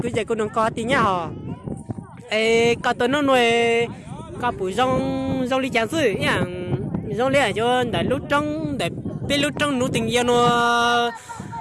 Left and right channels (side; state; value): both; identical; correlation 1.00